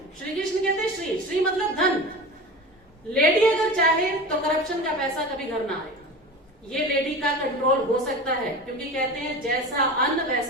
श्री कृष्ण कहते हैं श्री, श्री मतलब धन। लेडी अगर चाहे तो करप्शन का पैसा कभी घर ना आए, ये लेडी का कंट्रोल हो सकता है, क्योंकि कहते हैं जैसा अन्न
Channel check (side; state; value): both; normal; correlation 0.31